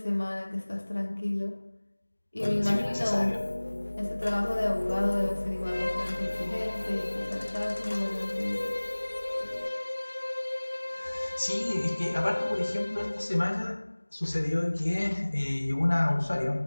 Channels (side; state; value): both; inverted; correlation -1.00